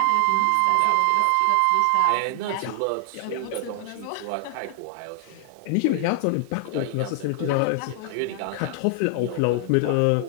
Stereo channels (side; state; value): both; different; correlation 0.00